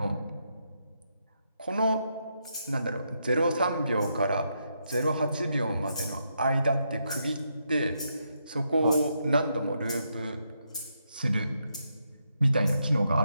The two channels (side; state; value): both; inverted; correlation -0.80